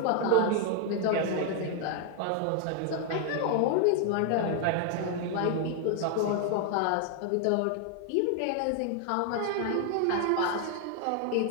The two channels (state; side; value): different; both; correlation 0.00